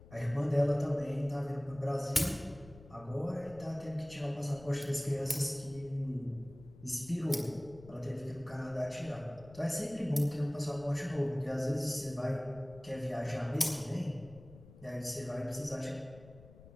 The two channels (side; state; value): left; noise; rumble, 19 dB below the sound